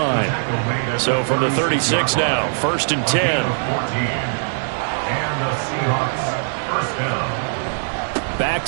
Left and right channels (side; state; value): left; silent; digital silence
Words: So from the 36 now, 1st and 10. And the Seahawks first down. Back